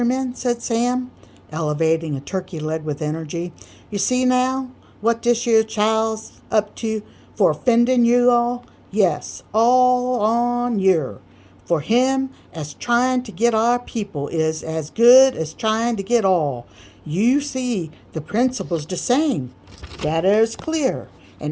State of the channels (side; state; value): both; identical; correlation 1.00